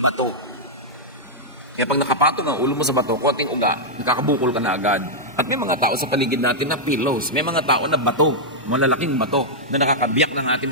bato. Kaya pag nakapatong ang ulo mo sa bato, konting uga, nakakabukol ka na agad. At may mga tao sa paligid natin na pillows. May mga tao na bato, malalaking bato, na nakakabiyak ng ating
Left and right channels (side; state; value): both; normal; correlation -0.06